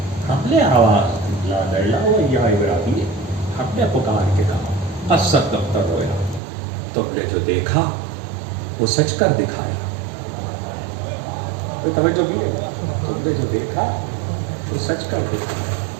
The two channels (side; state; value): left; drops out; at 6.4 s